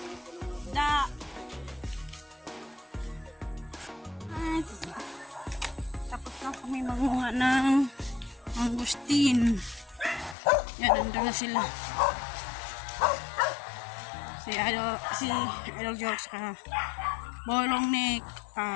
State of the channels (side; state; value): right; drops out; at 10.4 s